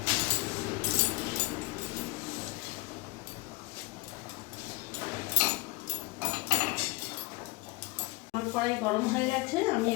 আমার কড়াই গরম হয়ে গেছে, আমি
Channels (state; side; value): quieter; right; 24.6 dB